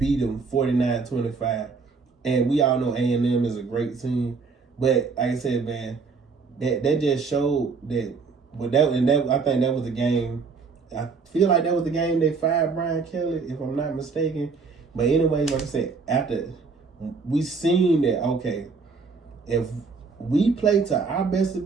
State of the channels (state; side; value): quieter; left; 4.7 dB